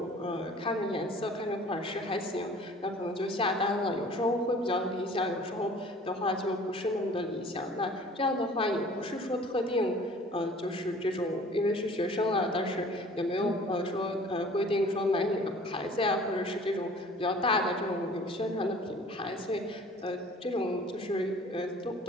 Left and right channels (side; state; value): both; normal; correlation 0.49